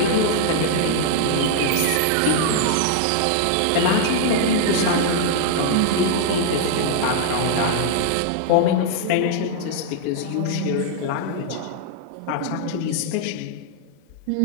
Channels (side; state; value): both; different; correlation -0.01